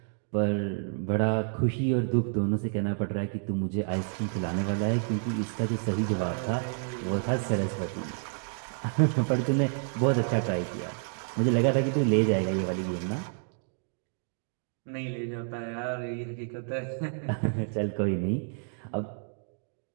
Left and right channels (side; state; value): left; silent; 58 dB below the other